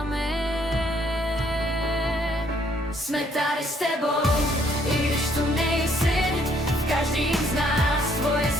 Jsme tady s tebou, i když tu nejsi, v každým z nás tvoje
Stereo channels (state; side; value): normal; both; correlation 0.67